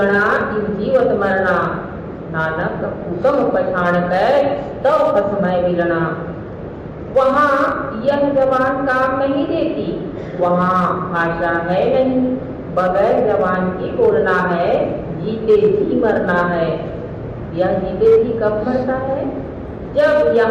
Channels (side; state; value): both; identical; correlation 1.00